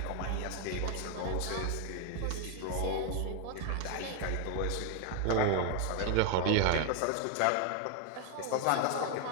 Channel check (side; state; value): both; different; correlation 0.01